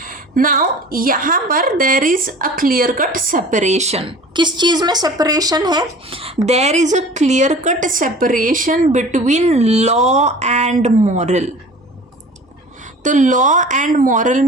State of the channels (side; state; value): both; normal; correlation 0.43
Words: नाउ यहाँ पर there is a clear cut separation. किस चीज़ में सेपरेशन है? There is a clear cut separation between law and moral. तो लॉ एंड मॉरल